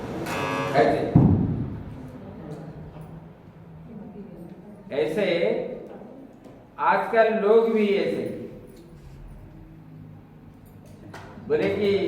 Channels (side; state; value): both; identical; correlation 1.00